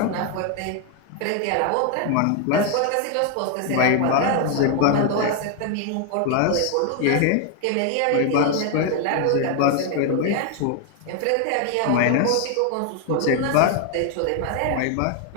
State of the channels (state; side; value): different; both; correlation 0.00